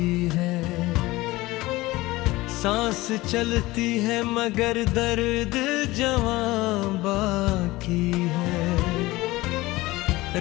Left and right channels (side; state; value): right; quieter; 19.5 dB